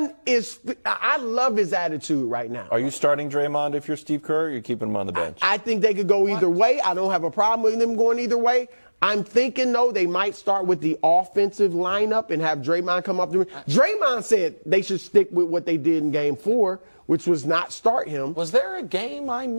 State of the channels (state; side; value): inverted; both; correlation -1.00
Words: is, I love his attitude right now. Are you starting Draymond if you're Steve Kerr, or are you keeping him on the bench? I think they could go either way. I don't have a problem with them going either way. I'm thinking, though, they might start with the offensive lineup and have Draymond come up. Draymond said they should stick with what they did in Game 4, which was not start him. Was there a game I